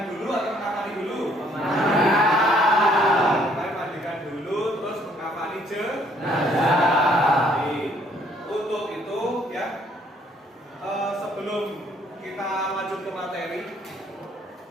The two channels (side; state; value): both; normal; correlation 0.64